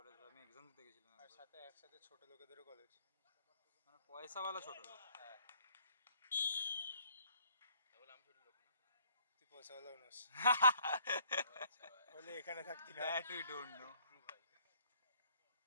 আমি এক্সাম দিতে গেছিলাম আর একবার। সাথে একসাথে ছোট লোকেদেরও কলেজ। মানে পয়সাওয়ালা ছোট লোক। হ্যাঁ, তাহলে আমি ছোট লোক না। তুই পয়সাওয়ালা নোস, আচ্ছা ভাই। হলে এখানে থাকতি না। That we don't know. True ভাই।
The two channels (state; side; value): inverted; both; correlation -0.61